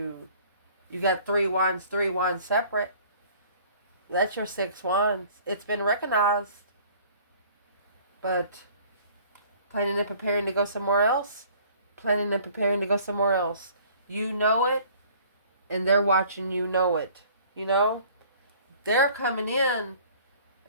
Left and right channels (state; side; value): inverted; both; correlation -0.53